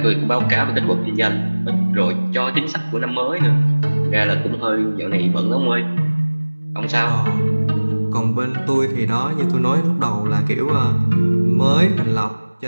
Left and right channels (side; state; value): both; inverted; correlation -1.00